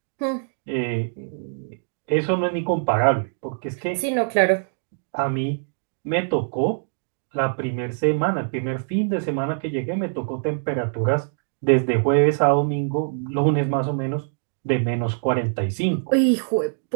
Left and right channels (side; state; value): left; silent; digital silence